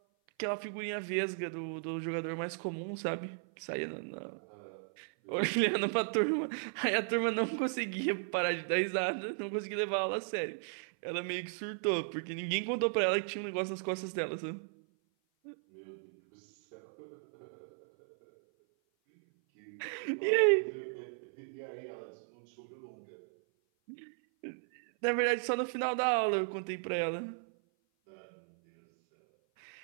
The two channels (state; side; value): silent; left; 54 dB below the other